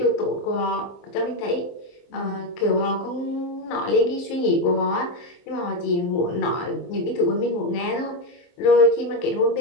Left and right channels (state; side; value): late; right; 23 ms